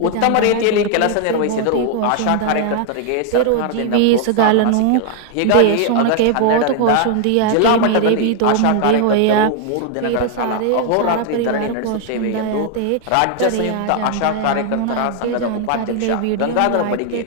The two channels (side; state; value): both; different; correlation 0.00